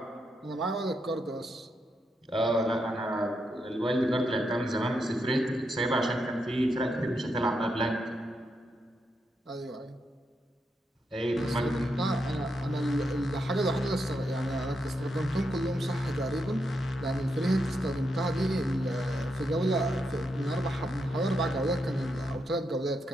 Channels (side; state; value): both; normal; correlation 0.83